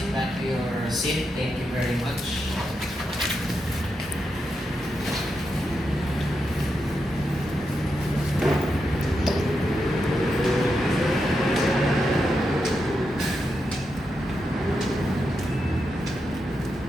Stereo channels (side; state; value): both; normal; correlation 0.85